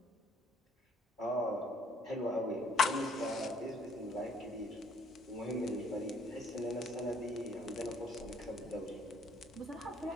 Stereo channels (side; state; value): both; normal; correlation 0.62